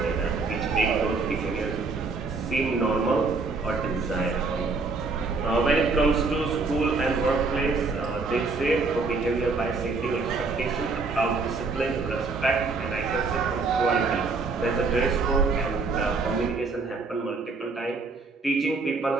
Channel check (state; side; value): quieter; left; 4.1 dB